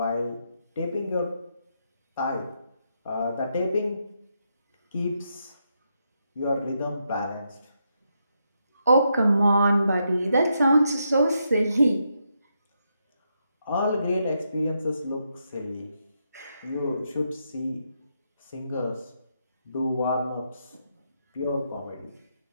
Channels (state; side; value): inverted; both; correlation -0.81